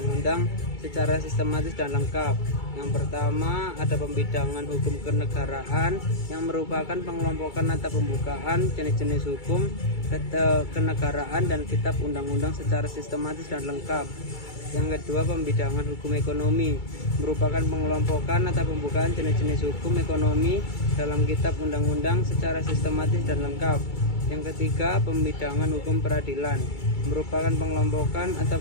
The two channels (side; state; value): right; late; 2.3 ms